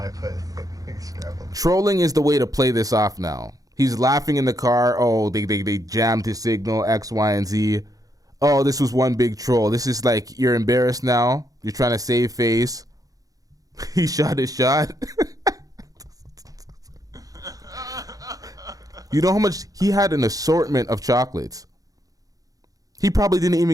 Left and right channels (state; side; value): late; left; 0.17 ms